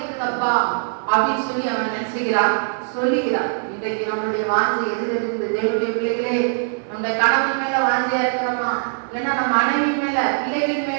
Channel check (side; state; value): left; silent; digital silence